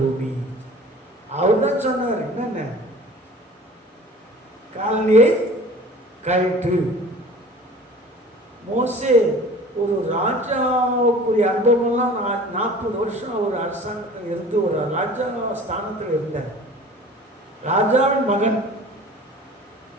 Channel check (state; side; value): normal; both; correlation 0.44